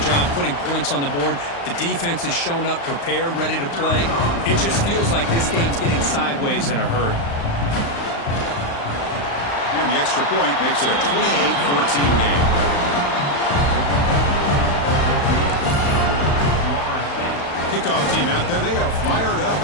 job, putting points on the board. The defense has shown up, prepared, ready to play. It just feels like this game's getting sideways in a hurry. And the extra point makes it a 28-14 game. Kickoff team out there, they are fired up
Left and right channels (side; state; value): right; late; 35 ms